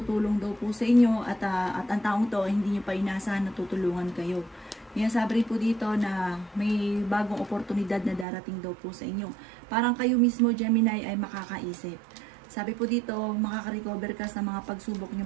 daw po sa inyo at ang taong to hindi nyo pa inasahan na tutulungan kayo. Sinasabi po dito na may bagong oportunidad na darating daw po sa inyo. Parang kayo mismo Gemini ay makakaisip. Sabi po dito, makaka-recover ka sa mga pagsubok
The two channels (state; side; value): drops out; left; at 8.2 s